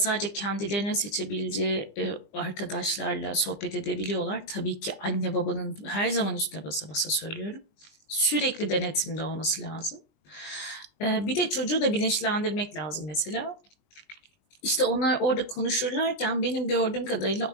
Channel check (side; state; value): right; late; 20 ms